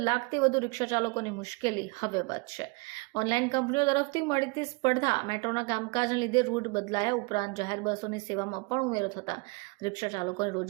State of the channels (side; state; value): left; quieter; 28.8 dB